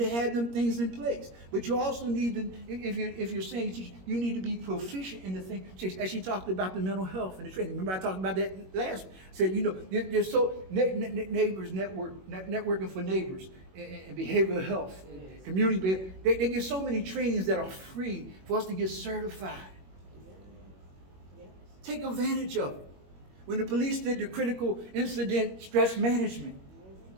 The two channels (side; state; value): left; late; 21 ms